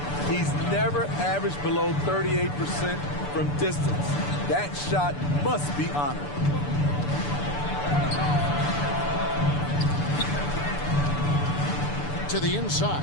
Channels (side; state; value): right; late; 6.9 ms